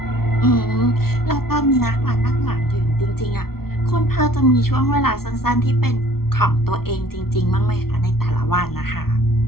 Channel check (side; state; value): right; late; 0.94 ms